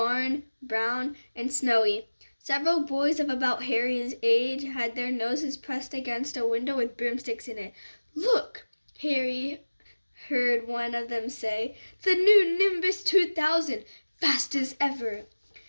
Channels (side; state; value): both; inverted; correlation -1.00